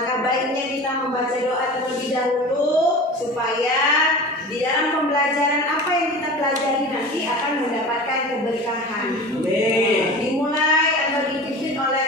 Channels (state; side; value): normal; both; correlation 0.35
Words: baiknya kita membaca doa terlebih dahulu supaya di dalam pembelajaran apa yang kita pelajari nanti akan mendapatkan keberkahan. Dimulai atau dipimpin